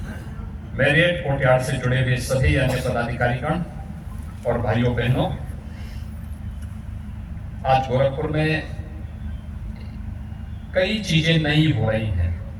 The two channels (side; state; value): both; identical; correlation 1.00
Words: मैरियट कोर्टयार्ड से जुड़े हुए सभी अन्य पदाधिकारीगण और भाइयों बहनों, आज गोरखपुर में कई चीजें नई हो रही हैं,